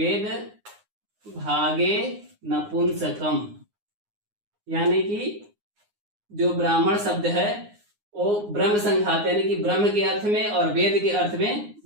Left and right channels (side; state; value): left; late; 9.6 ms